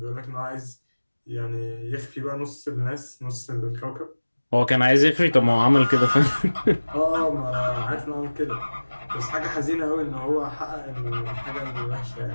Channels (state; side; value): inverted; both; correlation -1.00